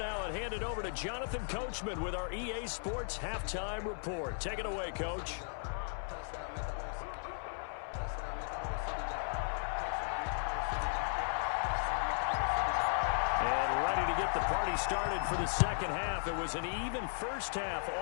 and hand it over to Jonathan Coachman with our EA Sports Halftime Report. Take it away, Coach. And ready to get the party started for the second half. It was an even first half,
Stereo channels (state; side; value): silent; right; 54 dB below the other